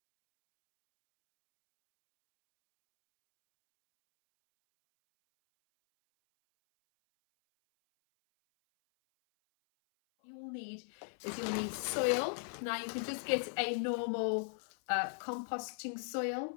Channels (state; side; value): silent; right; 53 dB below the other